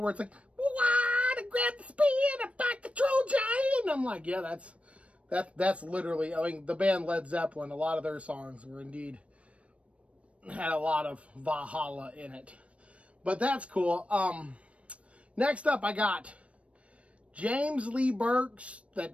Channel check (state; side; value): late; left; 0.063 ms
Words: where it's like, to grab the spear and fight the troll giant. And I'm like, yeah, that's literally, I mean, the band Led Zeppelin, a lot of their songs were indeed, had a lot of Valhalla in it. But that's cool. Next up, I got James Lee Burke's The